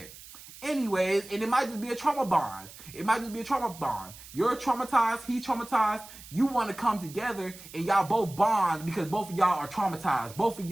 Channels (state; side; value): noise; right; hiss, 17 dB below the sound